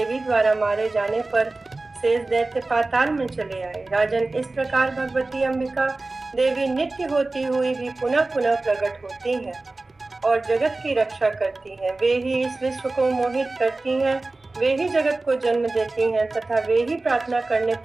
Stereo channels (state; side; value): quieter; left; 3.2 dB